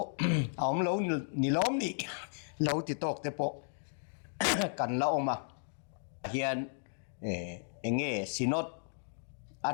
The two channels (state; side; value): silent; right; digital silence